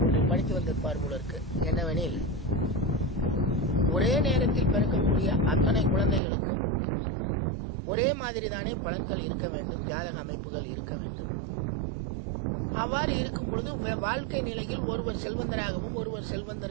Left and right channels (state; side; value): drops out; left; at 6.2 s